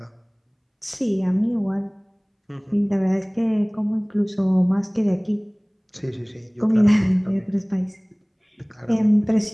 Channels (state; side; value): identical; both; correlation 1.00